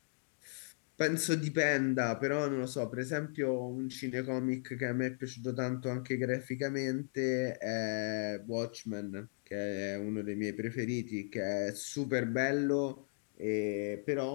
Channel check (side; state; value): right; silent; digital silence